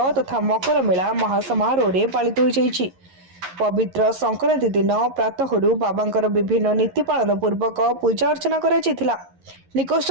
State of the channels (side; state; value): left; late; 11 ms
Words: तथा मकर मेला महासमारोह में पालित हो। पवित्र संक्रांति दिन प्रातः बाबांकर विभिन्न नीति पालन पूर्वक पूजा अर्चना कर